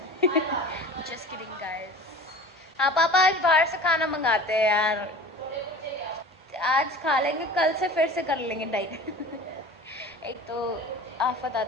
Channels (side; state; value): both; normal; correlation 0.39